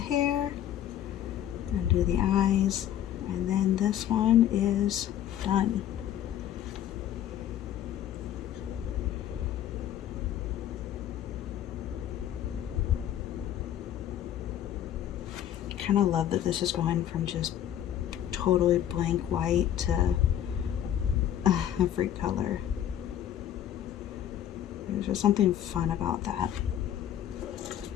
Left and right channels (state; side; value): quieter; right; 11.0 dB